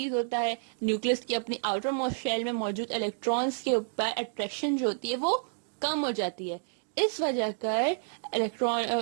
होता है, न्यूक्लियस की अपनी आउटर मोस्ट शेल में मौजूद इलेक्ट्रॉन्स के ऊपर अट्रैक्शन जो होती है वो कम हो जाती है। इस वजह कर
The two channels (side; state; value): left; silent; digital silence